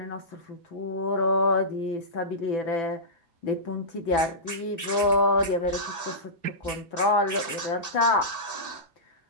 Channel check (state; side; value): late; right; 2.6 ms